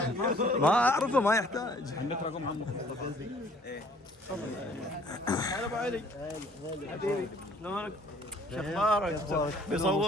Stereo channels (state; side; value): normal; both; correlation 0.57